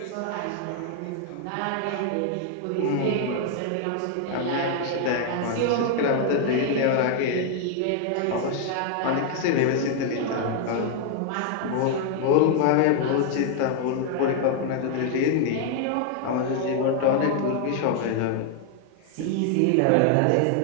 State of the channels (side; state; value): both; different; correlation 0.00